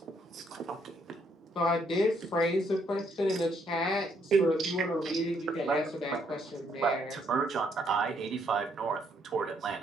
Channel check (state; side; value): normal; both; correlation 0.71